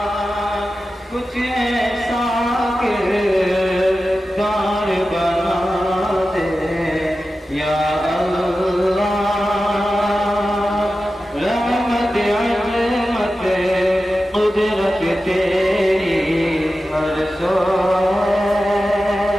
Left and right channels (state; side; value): normal; both; correlation 0.93